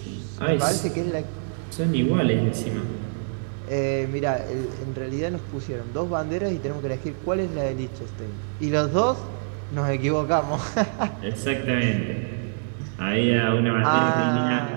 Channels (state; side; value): silent; left; 62 dB below the other